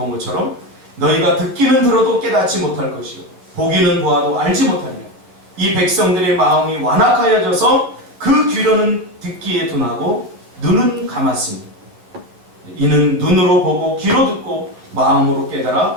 것처럼 너희가 듣기는 들어도 깨닫지 못할 것이요 보기는 보아도 알지 못하리라. 이 백성들의 마음이 완악하여져서 그 귀로는 듣기에 둔하고 눈은 감았으니 이는 눈으로 보고 귀로 듣고 마음으로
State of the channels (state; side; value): late; left; 11 ms